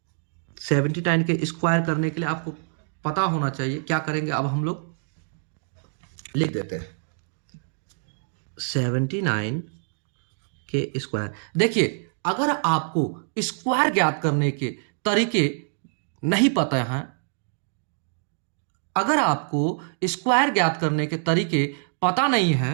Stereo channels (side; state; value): left; silent; digital silence